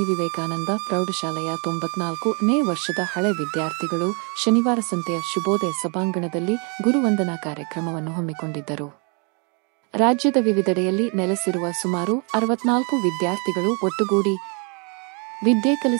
ವಿವೇಕಾನಂದ ಪ್ರೌಢಶಾಲೆಯ 94ನೇ ವರ್ಷದ ಹಳೆ ವಿದ್ಯಾರ್ಥಿಗಳು ಶನಿವಾರ ಸಂತೆಯ ಶುಭೋದಯ ಸಭಾಂಗಣದಲ್ಲಿ ಗುರುವಂದನಾ ಕಾರ್ಯಕ್ರಮವನ್ನು ಹಮ್ಮಿಕೊಂಡಿದ್ದರು. ರಾಜ್ಯದ ವಿವಿಧೆಡೆಯಲ್ಲಿ ನೆಲೆಸಿರುವ ಸುಮಾರು 64 ವಿದ್ಯಾರ್ಥಿಗಳು ಒಟ್ಟುಗೂಡಿ ವಿದ್ಯೆ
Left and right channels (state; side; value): quieter; left; 35.1 dB